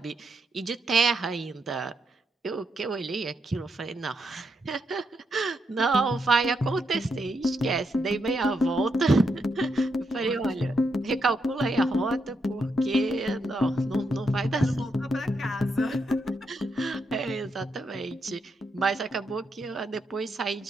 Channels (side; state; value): both; normal; correlation 0.81